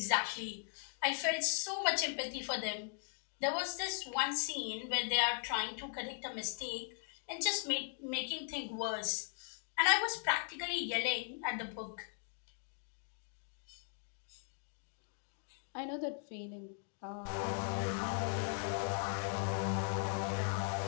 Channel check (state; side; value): silent; right; 52 dB below the other